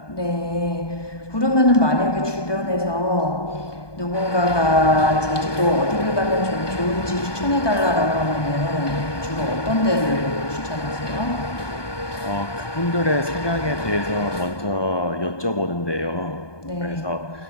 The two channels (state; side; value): late; right; 1.2 ms